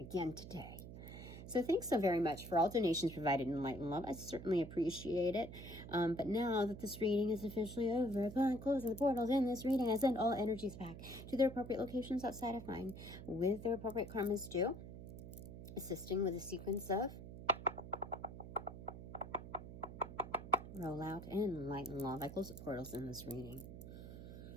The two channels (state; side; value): noise; right; hum, 11 dB below the sound